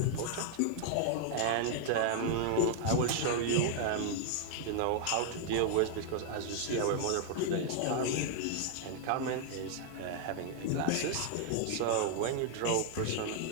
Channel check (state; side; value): different; both; correlation 0.00